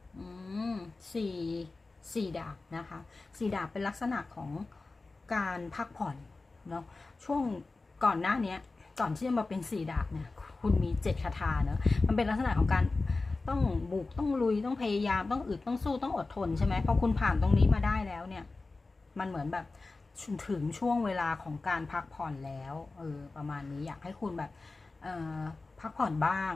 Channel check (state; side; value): quieter; right; 3.6 dB